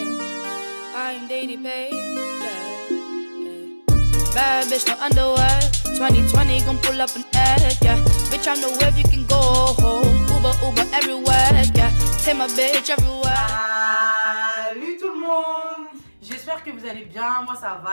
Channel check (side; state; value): both; inverted; correlation -1.00